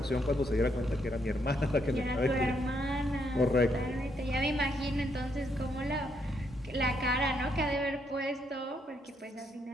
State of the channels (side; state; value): both; normal; correlation 0.75